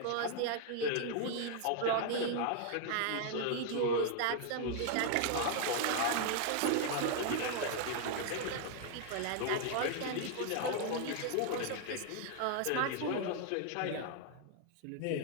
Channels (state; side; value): different; both; correlation 0.00